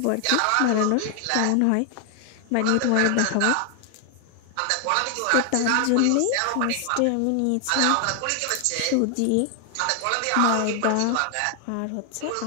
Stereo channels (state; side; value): different; both; correlation 0.00